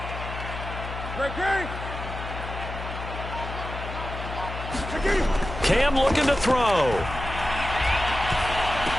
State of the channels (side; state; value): left; noise; hum, 8 dB below the sound